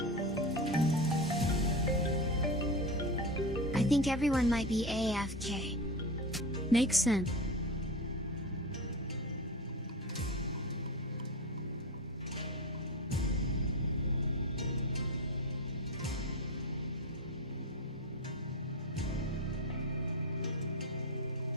I think everyone might be AFK. Makes sense.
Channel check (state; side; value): normal; both; correlation 0.24